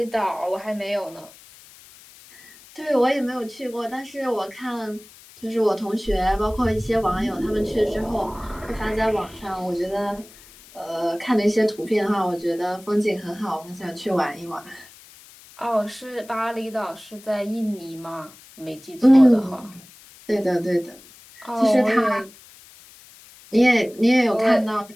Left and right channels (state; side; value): noise; left; hiss, 22 dB below the sound